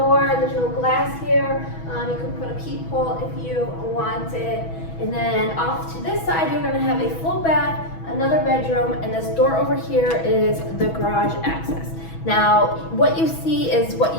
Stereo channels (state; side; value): late; right; 6.1 ms